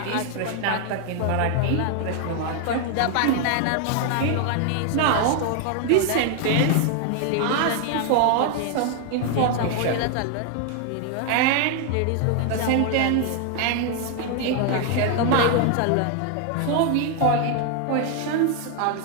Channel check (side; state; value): both; different; correlation 0.00